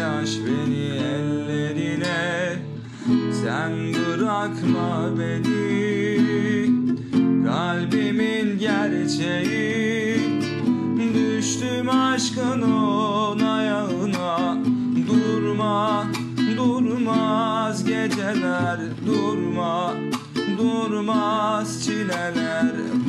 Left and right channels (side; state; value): both; identical; correlation 1.00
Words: beni ellerine. Sen bırakma beni, kalbimin gerçeği. Düştüm aşkın on ayağına. Durma, durmaz geceler. Durma, durmaz çileler.